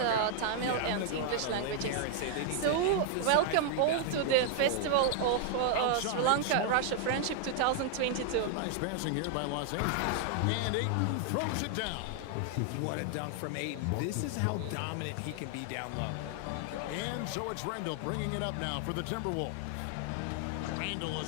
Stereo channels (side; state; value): both; different; correlation 0.00